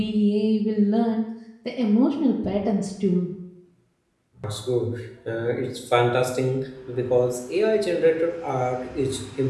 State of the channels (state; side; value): identical; both; correlation 1.00